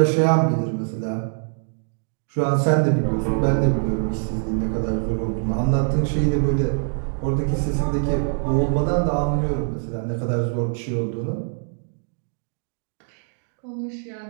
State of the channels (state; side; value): silent; left; 63 dB below the other